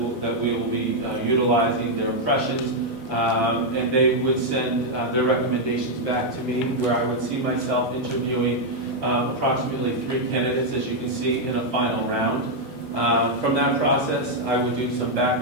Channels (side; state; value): both; normal; correlation -0.01